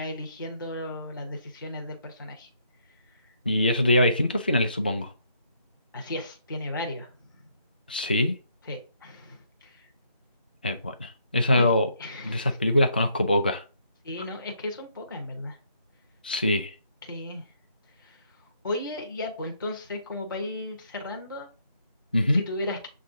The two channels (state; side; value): inverted; both; correlation -0.70